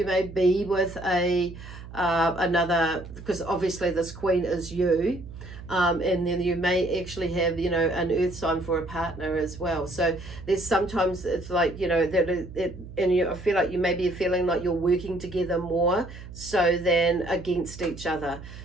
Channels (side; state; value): right; noise; hum, 14 dB below the sound